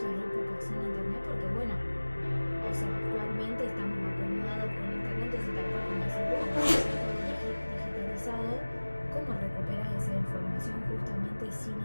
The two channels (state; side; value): inverted; both; correlation -1.00